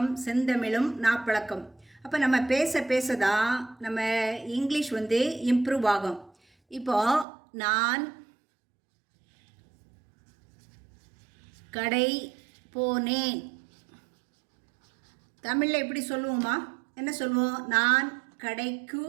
செந்தமிழும் நாப்பழக்கம். அப்போ நம்ம பேச தான் நம்ம இங்கிலீஷ் இம்ப்ரூவ் ஆகும். இப்போது நான் கடை போனேன். தமிழில் எப்படி சொல்லுவோமா? என்ன சொல்லுவோம்? நான் கடைக்கு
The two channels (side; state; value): left; drops out; at 7.2 s